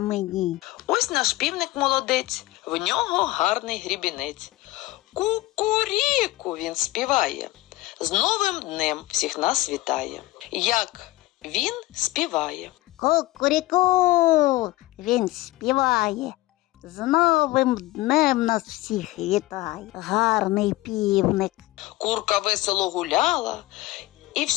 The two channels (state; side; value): quieter; right; 18.6 dB